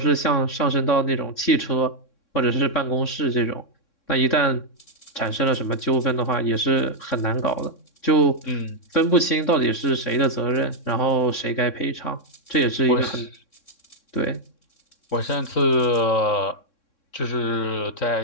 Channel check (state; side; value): late; right; 3.6 ms